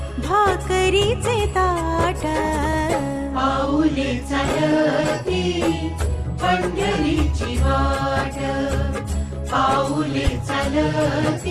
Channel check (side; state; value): both; identical; correlation 1.00